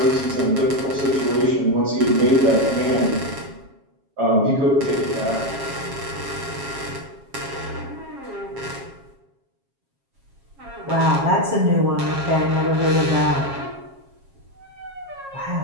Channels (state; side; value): late; left; 7.3 ms